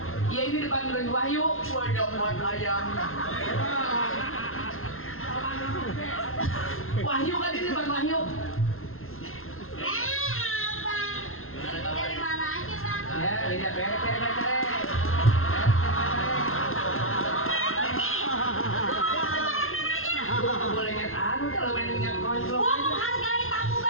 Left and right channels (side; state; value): right; late; 0.61 ms